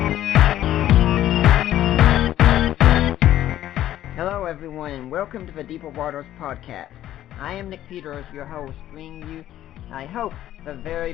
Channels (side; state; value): right; quieter; 12.7 dB